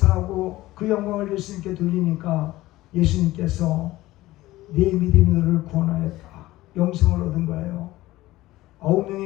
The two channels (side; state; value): right; quieter; 17.3 dB